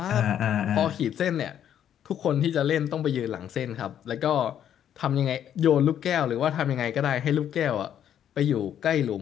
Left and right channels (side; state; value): right; quieter; 9.9 dB